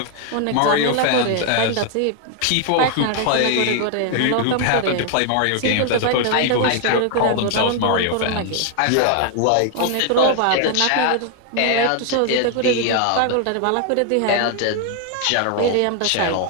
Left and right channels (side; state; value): both; different; correlation 0.00